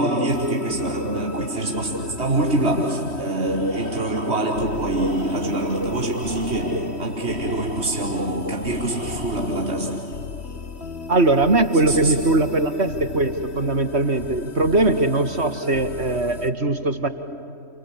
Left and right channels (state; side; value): late; left; 3.1 ms